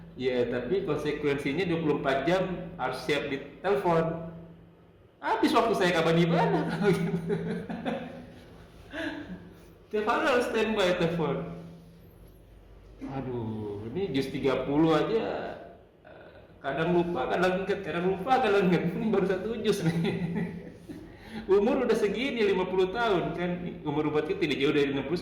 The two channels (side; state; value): both; identical; correlation 1.00